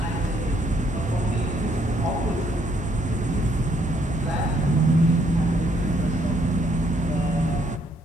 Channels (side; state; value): both; normal; correlation 0.69